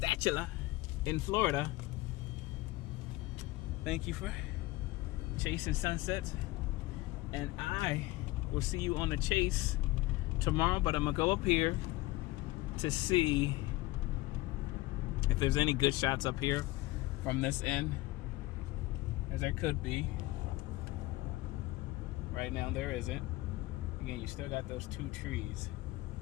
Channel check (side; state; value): right; quieter; 19.1 dB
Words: in Florida. Thank you for chasing sunsets, and I will see you on the chase tomorrow, but I'm gonna go up here to see if there's any good shots up here from this end, as there could be. Right now there isn't. Again, you still got those two trees.